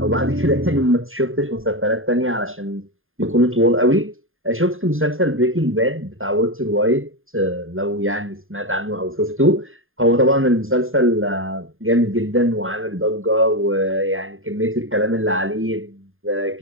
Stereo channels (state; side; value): late; left; 0.59 ms